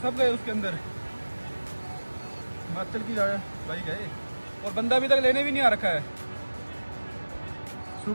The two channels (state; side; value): inverted; both; correlation -1.00